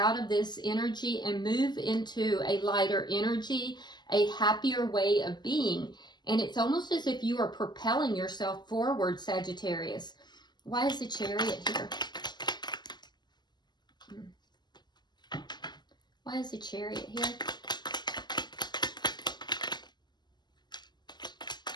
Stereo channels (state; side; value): late; right; 0.21 ms